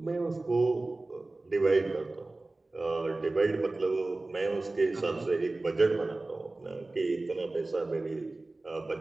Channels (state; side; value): quieter; left; 3.1 dB